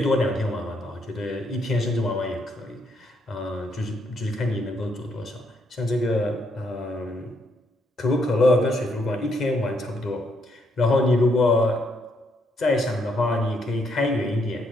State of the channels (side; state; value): both; normal; correlation 0.74